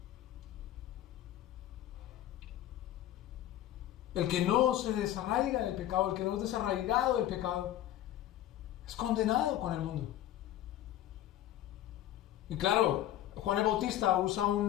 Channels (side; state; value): right; quieter; 12.9 dB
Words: El que no se desarraiga del pecado, el que no es desarraigado del pecado, es condenado con el mundo. Y claro, Juan el Bautista usa